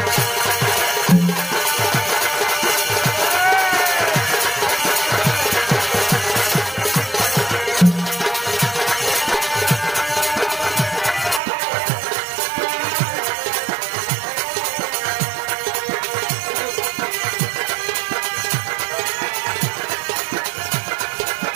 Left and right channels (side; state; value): left; drops out; at 11.4 s